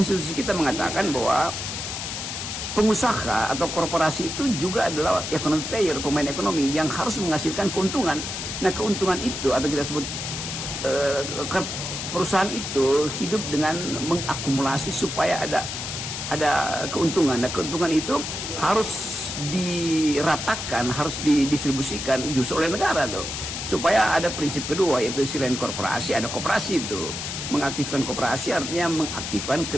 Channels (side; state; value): left; noise; hiss, 5 dB below the sound